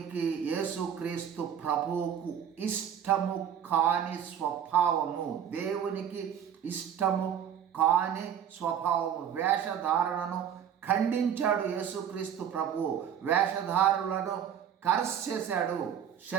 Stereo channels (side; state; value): left; quieter; 8.9 dB